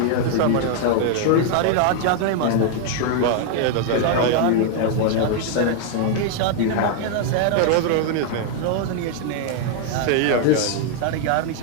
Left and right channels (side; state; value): both; different; correlation 0.00